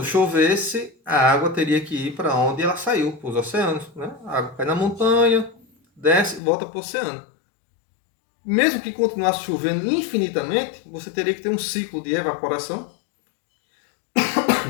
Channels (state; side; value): drops out; right; at 6.4 s